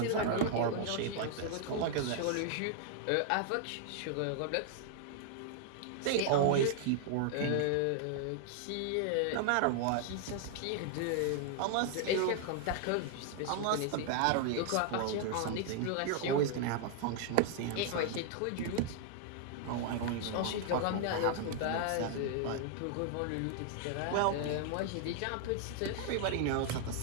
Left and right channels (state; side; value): different; both; correlation 0.00